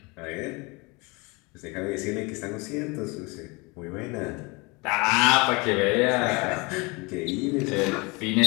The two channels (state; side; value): quieter; right; 27.2 dB